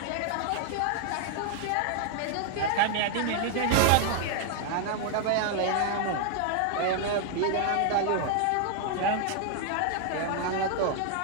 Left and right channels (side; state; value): both; different; correlation 0.00